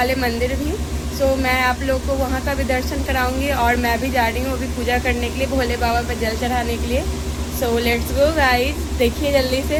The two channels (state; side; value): identical; both; correlation 1.00